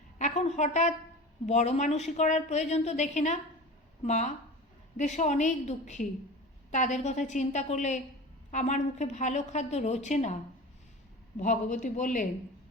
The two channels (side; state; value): both; normal; correlation 0.34